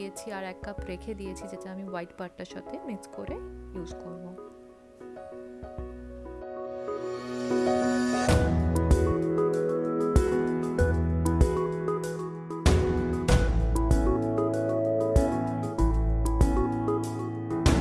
আর 1 কাপ রেখে দিয়েছি, যেটা আমি হোয়াইট পার্টটার সাথে মিক্স করে ইউজ করব।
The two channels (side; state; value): both; identical; correlation 1.00